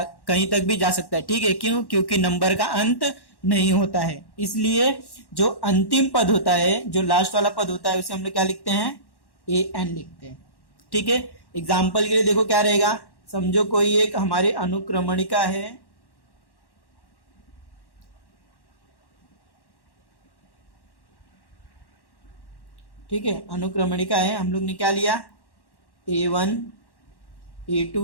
कहीं तक भी जा सकता है, ठीक है। क्यों? क्योंकि नंबर का अंत नहीं होता है, इसलिए जो अंतिम पद होता है, जो लास्ट वाला पद होता है, उसे हम लोग क्या लिखते हैं, ए एन लिखते हैं, ठीक है। एग्जाम्पल के लिए देखो क्या रहेगा, समझो कोई एक हमारी अनुक्रमणिका है, ठीक है, अनुक्रमणिका है, हम लोग ने क्या लिया, A1, A2,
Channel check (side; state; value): right; late; 1.1 ms